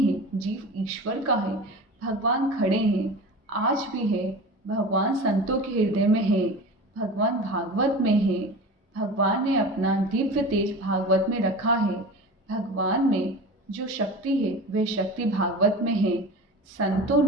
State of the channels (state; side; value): normal; both; correlation 0.33